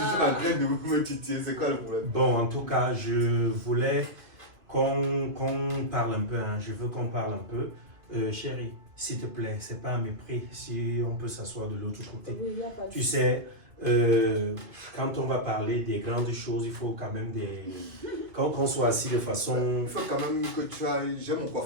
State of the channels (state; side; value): late; left; 2.2 ms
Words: en train de me titiller, c'est quoi le problème? Bon, en tout cas, je voulais qu'on parle un peu. Hein. Je veux qu'on parle un peu. Chérie, s'il te plaît, c'est pas un mépris. Si on peut s'asseoir de l'autre côté. Oui, il y a pas de Tu sais, quand on va parler des grandes choses, il faut quand même qu'on soit assis de façon... Il faut quand même que tu ailles. J'ai mon